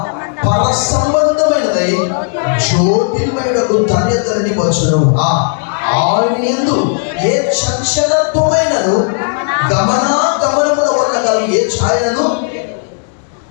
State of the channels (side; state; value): right; silent; 59 dB below the other